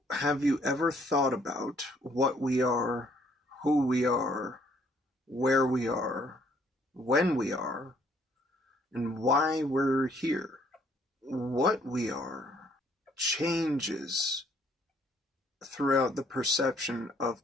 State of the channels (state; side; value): normal; both; correlation 0.64